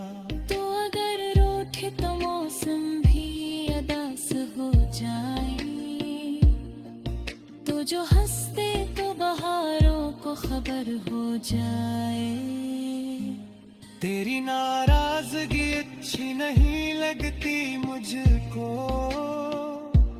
तो अगर रूठे तो मौसम भी अदास हो जाए, तो जो हंसते तो बहारों को खबर हो जाए। तेरी नाराजगी अच्छी नहीं लगती मुझको,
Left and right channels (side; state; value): both; identical; correlation 1.00